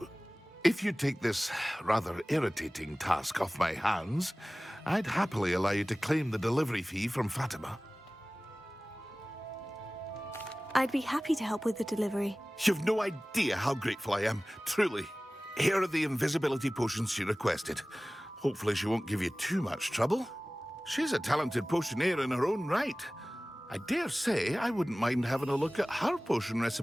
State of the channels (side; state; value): both; normal; correlation 0.98